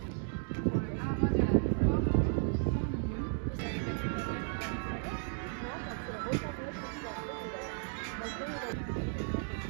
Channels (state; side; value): silent; left; 55 dB below the other